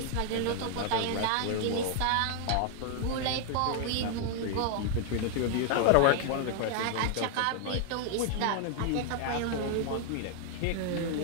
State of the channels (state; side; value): different; both; correlation 0.00